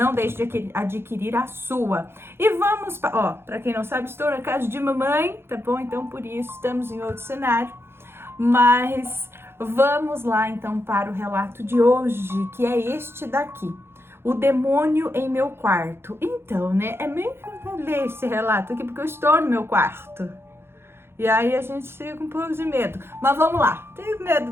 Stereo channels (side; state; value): left; late; 0.11 ms